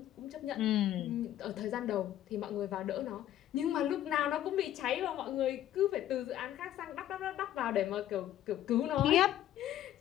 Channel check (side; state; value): right; quieter; 12.3 dB